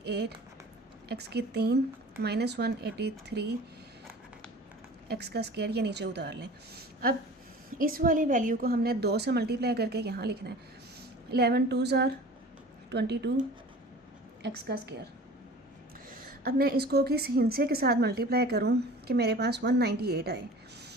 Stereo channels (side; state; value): both; normal; correlation 0.41